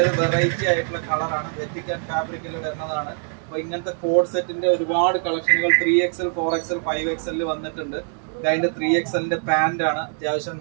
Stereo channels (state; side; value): silent; left; 58 dB below the other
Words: വെറൈറ്റി ആയിട്ടുള്ള കളറാണ്, വെറ്റിക്കൻ ഫാബ്രിക്കിൽ വരുന്നതാണ്. അപ്പോൾ ഇങ്ങനത്തെ കോഡ് സെറ്റിന്റെ ഒരുപാട് കളക്ഷനുകൾ 3XL 4XL 5XL വന്നിട്ടുണ്ട്. അതിന്റെ 3XLന്റെ പാന്റ് ആണ്, അത്യാവശ്യം